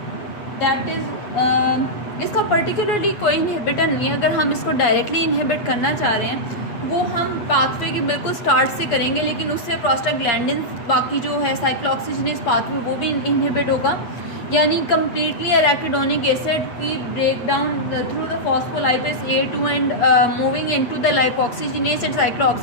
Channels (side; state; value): right; late; 8.5 ms